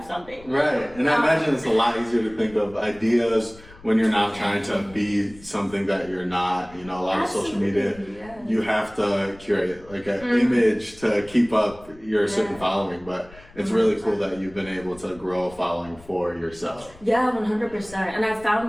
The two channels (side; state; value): left; noise; rumble, 22 dB below the sound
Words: something. Right, and I imagine it's a lot easier to think of ideas when you're not trying to be something that you're not. You know, a lot of social media, you have to curate like an image to keep up your certain following, but it's really cool that you've been able to grow a following for yourself. Yeah, 100%. And I've